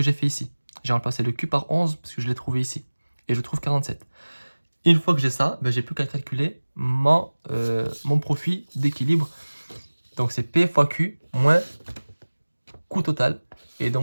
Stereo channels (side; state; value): both; inverted; correlation -1.00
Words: j'ai fait ici. J'ai remplacé le Q par 11 parce que je l'ai trouvé ici. Et je trouve 47. Une fois que j'ai ça, j'ai plus qu'à calculer mon profit d'équilibre. Donc, c'est P fois Q moins coût total. Et